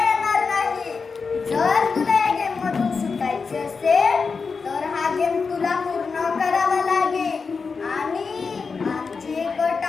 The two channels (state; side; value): quieter; right; 5.0 dB